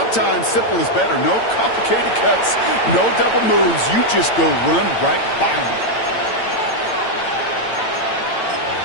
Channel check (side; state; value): right; late; 8.9 ms